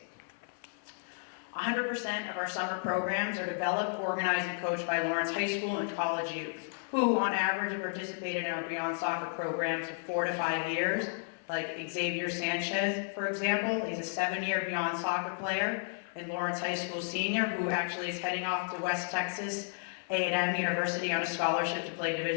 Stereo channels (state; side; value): silent; right; 56 dB below the other